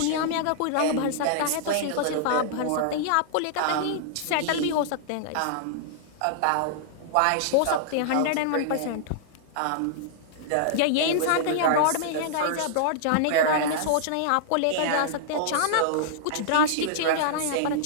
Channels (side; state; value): both; different; correlation -0.01